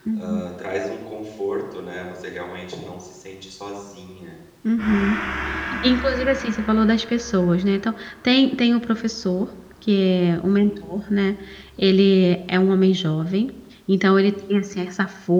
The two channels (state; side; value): identical; both; correlation 1.00